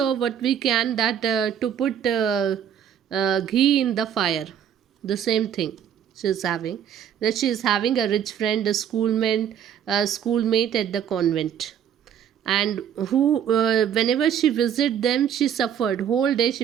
what we can that to put ghee in the fire. The same thing she is having. That she is having a rich friend, a schoolmate at the convent, and who whenever she visited them, she suffered whole day.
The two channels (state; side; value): quieter; left; 9.1 dB